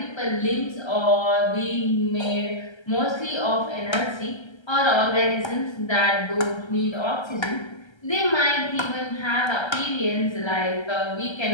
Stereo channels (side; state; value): right; late; 1.3 ms